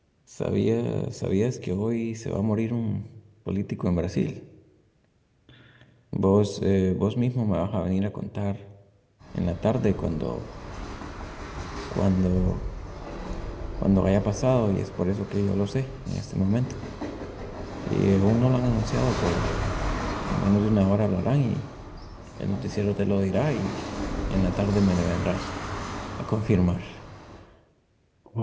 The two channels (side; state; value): both; identical; correlation 1.00